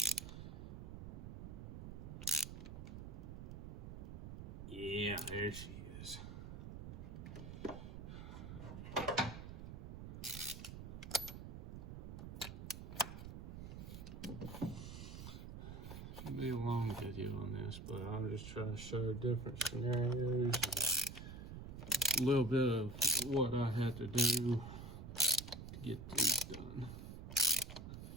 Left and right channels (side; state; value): right; noise; rumble, 9 dB below the sound